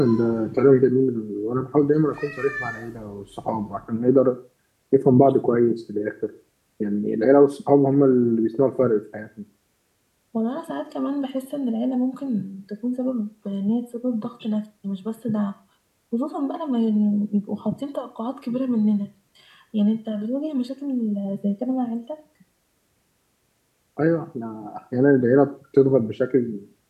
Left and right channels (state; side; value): identical; both; correlation 1.00